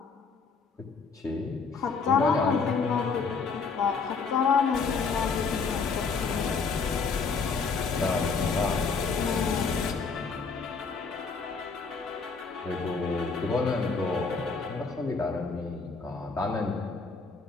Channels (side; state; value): right; quieter; 4.9 dB